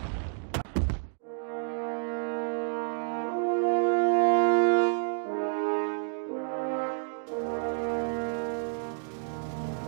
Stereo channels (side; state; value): left; silent; digital silence